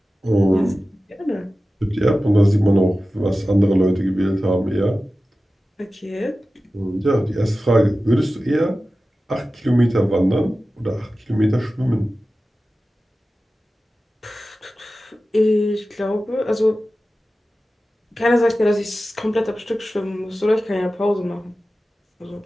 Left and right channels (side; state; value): both; normal; correlation 0.95